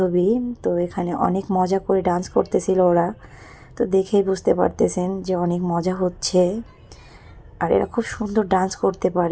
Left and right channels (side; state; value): both; identical; correlation 1.00